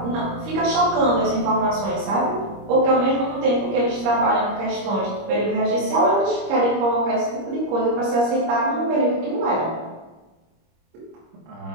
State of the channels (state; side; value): late; left; 25 ms